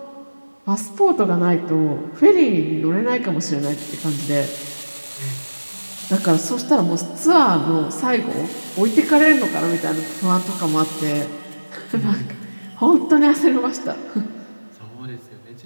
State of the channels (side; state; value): both; inverted; correlation -1.00